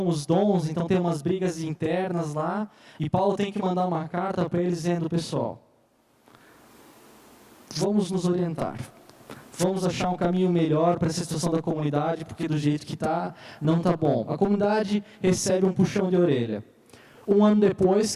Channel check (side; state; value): both; identical; correlation 1.00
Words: os dons, então tem umas brigas internas lá, e Paulo tem que mandar uma carta para eles dizendo, pessoal, vamos nos orientar, vamos achar um caminho melhor para essa situação da comunidade, porque do jeito que está, não está bom. A comunidade recebe um puxão de orelha. Um ano depois,